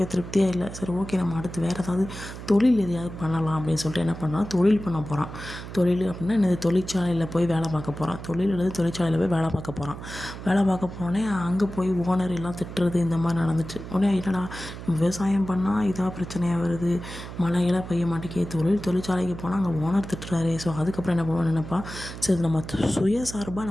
திருப்தியாக இல்லை. சரி ஓகே நம்ம அடுத்து வேறு ஏதாவது தொழில் எதையாவது பண்ணலாம் அப்படின்னு சொல்லிட்டு என்ன பண்ணான், தொழில் பண்ண போகிறான். தொழில் அப்படின்னா என்னது, தொழிற்சாலையில் போய் வேலை பார்க்க போகிறான். தொழில் அல்லது தொழிற்சாலையில் போய் வேலை பார்க்க போகிறான். வேலை பார்க்க போனோடனே அங்கே போய் ஓனர் எல்லாம் திட்டுறது இந்த மாதிரி நடந்துச்சு. உடனே என்னடா விவசாயம் பண்ணால் இதாக பிரச்சனையாக வருது, மழையெல்லாம் பெய்ய மாட்டேங்குது, தொழிற்சாலைக்கு போனால் அங்கே ஓனர் திட்டுறாரு. ஸோ அதுக்கப்புறம் என்ன பண்ணுவான்னு நினைப்பா, சரி நம்ம சுயசார்பாக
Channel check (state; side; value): noise; right; hum, 11 dB below the sound